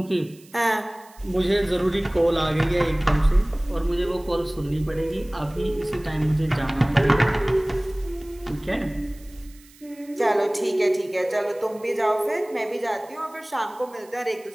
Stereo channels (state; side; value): noise; right; hiss, 25 dB below the sound